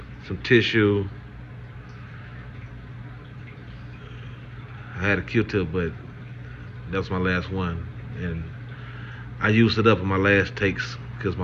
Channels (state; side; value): identical; both; correlation 1.00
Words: some tissue. I had a Q-tip, but that was my last one, and I used it up in my last takes because